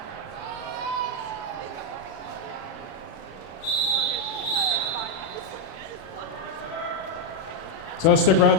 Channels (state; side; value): late; right; 37 ms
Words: So stick around